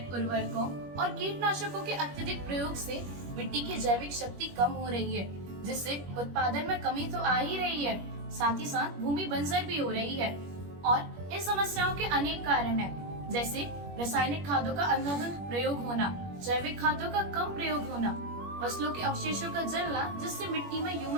उर्वरकों और कीटनाशकों के अत्यधिक प्रयोग से मिट्टी की जैविक शक्ति कम हो रही है, जिससे उत्पादन में कमी तो आ ही रही है, साथ ही साथ भूमि बंजर भी हो रही है। और इन समस्याओं के अनेक कारण हैं, जैसे रासायनिक खादों का अंधाधुंध प्रयोग होना, जैविक खादों का कम प्रयोग होना, फसलों के अवशेषों का जलना जिससे मिट्टी में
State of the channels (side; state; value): left; late; 21 ms